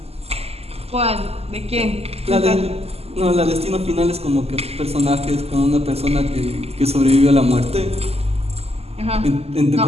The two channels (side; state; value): left; late; 0.29 ms